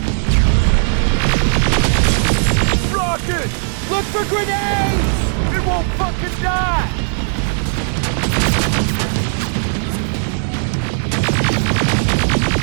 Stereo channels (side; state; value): left; silent; digital silence